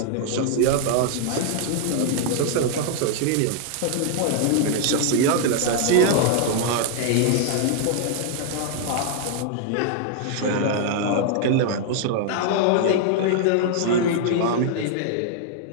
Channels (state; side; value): different; both; correlation 0.00